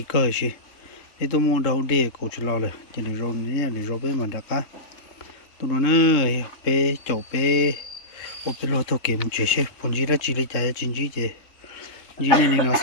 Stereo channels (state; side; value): late; right; 3.6 ms